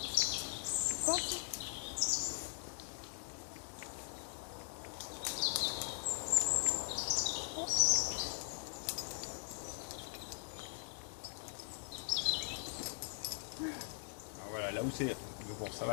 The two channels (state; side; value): silent; right; digital silence